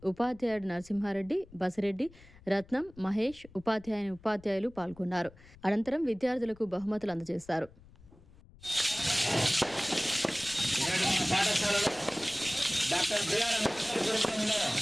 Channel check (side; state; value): left; noise; rumble, 23 dB below the sound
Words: ఉపాధ్యాయుడు నరసింహారెడ్డి, బసిరెడ్డి, రత్నం, మహేష్, ఉపాధ్యాయులు పాల్గొన్నారు. అనంతరం విద్యార్థులకు బహుమతులు అందజేశారు.